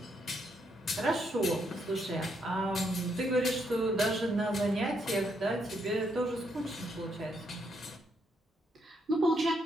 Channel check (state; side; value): normal; both; correlation 0.76